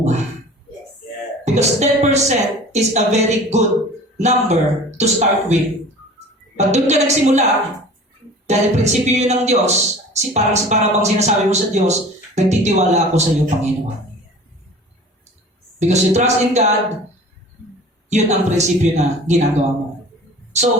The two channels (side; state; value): both; normal; correlation 0.42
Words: Yes. Yes. Because 10% is a very good number to start with. Pag doon ka nagsimula, dahil prinsipyo yun ng Diyos, parang bang sinasabi mo sa Diyos, nagtitiwala ako sa iyo, Panginoon. Because you trust in God, yun ang prinsipyo na ginagawa mo.